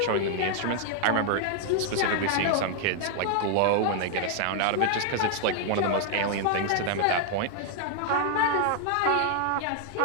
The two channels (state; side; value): different; both; correlation 0.00